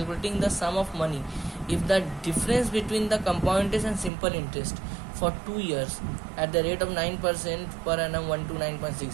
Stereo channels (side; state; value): left; drops out; at 4.1 s